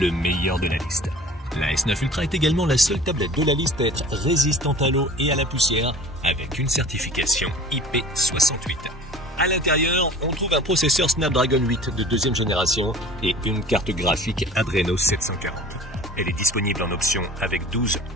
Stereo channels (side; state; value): both; normal; correlation 0.44